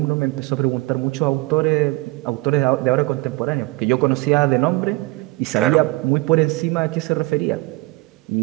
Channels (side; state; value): left; quieter; 23.2 dB